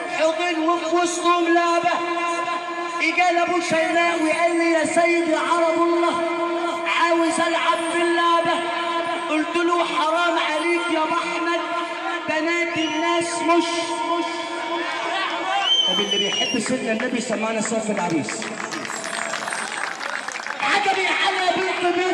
حضن وفي وسطهم لعبة اجى ابو شيماء وقال لي يا سيدي عرب الله مش طب اللي بيحب سيدنا النبي سمعنا سيف العريس. عجبي على بنت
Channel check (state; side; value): identical; both; correlation 1.00